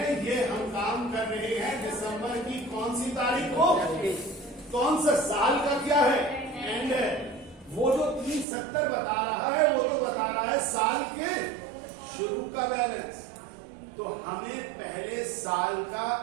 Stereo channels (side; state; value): left; drops out; at 8.5 s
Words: ये हम काम कर रहे हैं दिसंबर की कौन सी तारीख को, कौन सा साल का क्या है एंड है, वो जो 370 बता रहा है वो तो बता रहा है साल के शुरू का बैलेंस। तो हमें पहले साल का